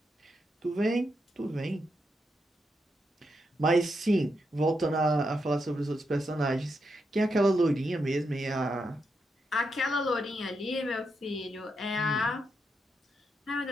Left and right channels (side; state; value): both; normal; correlation 0.83